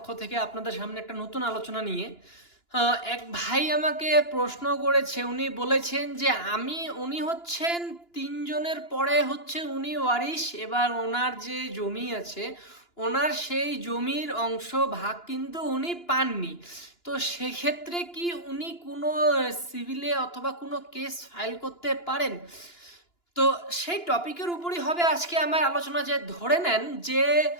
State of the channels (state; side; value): late; right; 2.9 ms